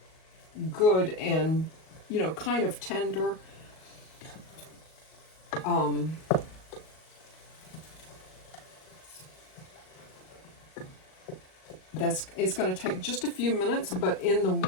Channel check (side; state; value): right; late; 38 ms